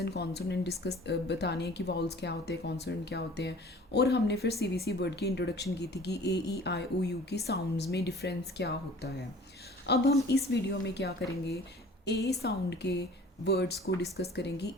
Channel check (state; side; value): normal; both; correlation 0.48